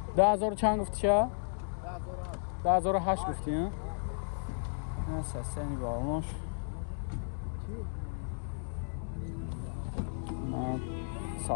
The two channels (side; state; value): right; silent; digital silence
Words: 10,000 چند گفتی چه؟ 2008 گفتی ها؟ نه ساسنی بالونش